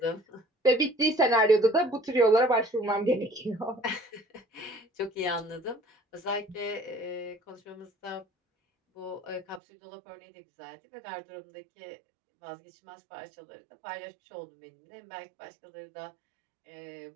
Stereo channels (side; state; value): left; drops out; at 9.6 s